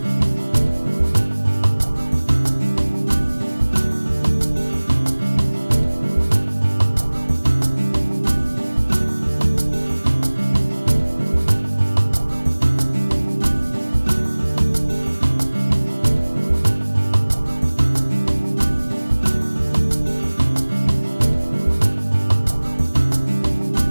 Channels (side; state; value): both; inverted; correlation -1.00